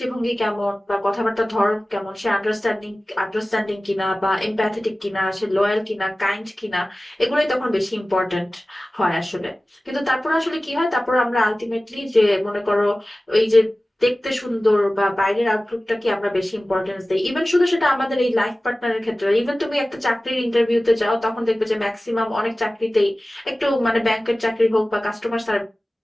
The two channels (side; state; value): both; normal; correlation 0.97